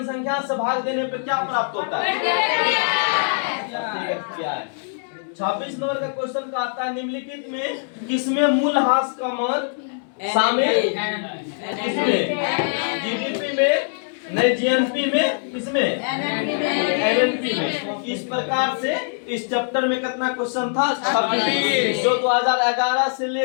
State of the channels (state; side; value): silent; right; digital silence